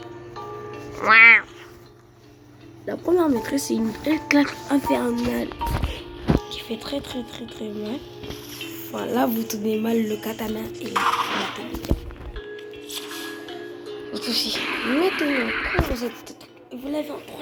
La première maîtrise, c'est une claque infernale qui fait très mal. Enfin, là, vous tenez mal le katana et la télé. Autre aussi. Maintenant, quand vous l'avez en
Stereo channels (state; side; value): identical; both; correlation 1.00